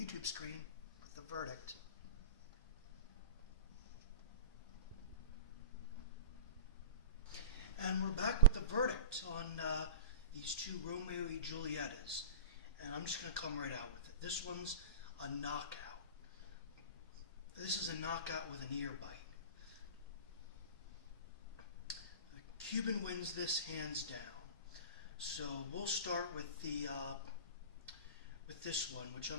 YouTube screen with the verdict. And we're back with the verdict on these two Romeo Y Julietas. And I'm just going to come right out with it. This one's a knockout. This is a knockout with an ear bite. Cuban wins this hands down. So we'll start with the with this one, which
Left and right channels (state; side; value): inverted; both; correlation -0.32